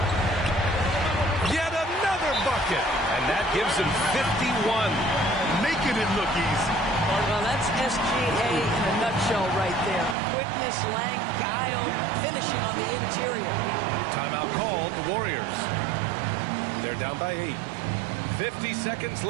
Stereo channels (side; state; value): left; drops out; at 10.2 s